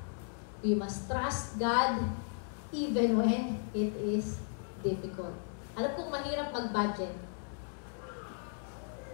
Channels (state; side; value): silent; right; 54 dB below the other